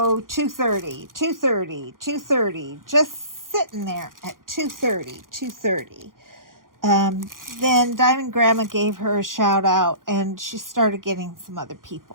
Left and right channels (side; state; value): left; late; 0.90 ms